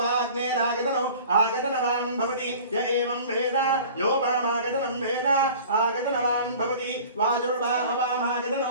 अग्नेरागतनो आगतनवान् भवति य एवं वेद योपामागतनं वेद आगतनवान् भवति वायुर्वा अपामागतनो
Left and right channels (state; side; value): inverted; both; correlation -0.43